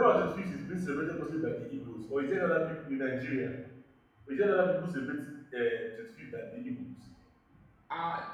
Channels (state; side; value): identical; both; correlation 1.00